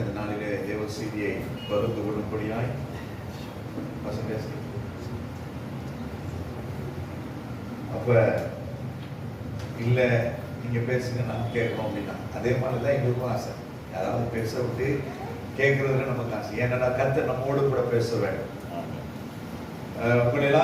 இந்த நாளிலே தேவ செய்தியை பகிர்ந்து கொள்ளும்படியாய். அப்ப இல்ல நீங்க பேசுங்க, நான் கேட்கணும் அப்படின்னா அதே மாதிரிதான் எங்களுக்கும் ஆசை. யாராவது பேச விட்டு கேட்கறதுல நமக்கு ஆசை. ஏன்னா கர்த்தர் நம்மோடு கூட பேச வேண்டும். உங்கள்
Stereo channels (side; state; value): both; identical; correlation 1.00